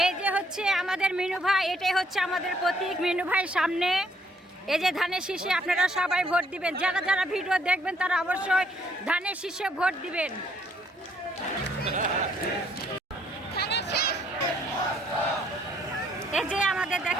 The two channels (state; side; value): normal; both; correlation 0.67